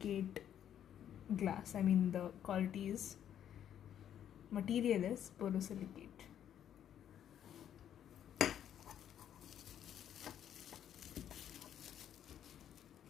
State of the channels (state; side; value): quieter; right; 10.0 dB